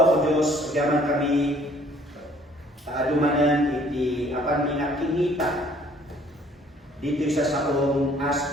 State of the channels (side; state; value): both; normal; correlation 0.58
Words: Diyos, agaman kami kaadumanan iti apan minakingita dito sa saong as